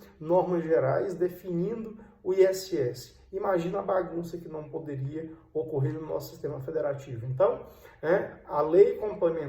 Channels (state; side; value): identical; both; correlation 1.00